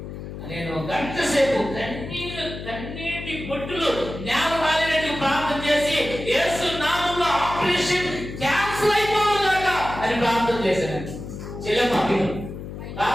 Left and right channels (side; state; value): left; noise; hum, 10 dB below the sound